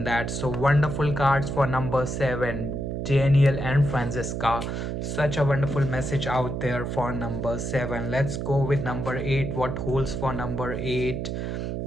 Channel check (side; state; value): right; noise; hum, 3 dB below the sound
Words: that. So wonderful cards for number 7, Daniel and Francisca. Such a wonderful message out there for number 7. Let's go with number 8. What holds for number 8